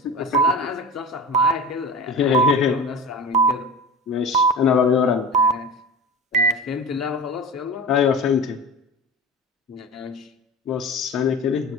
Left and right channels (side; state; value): both; normal; correlation 0.31